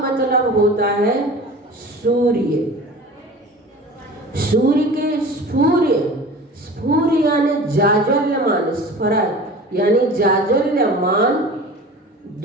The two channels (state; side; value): normal; both; correlation 0.38